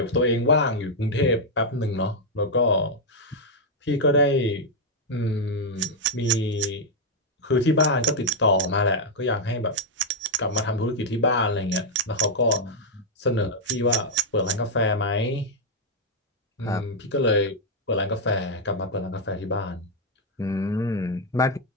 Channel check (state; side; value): normal; both; correlation -0.02